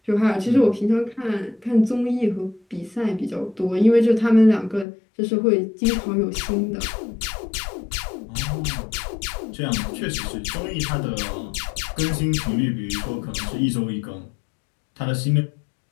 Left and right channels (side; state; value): right; drops out; at 4.9 s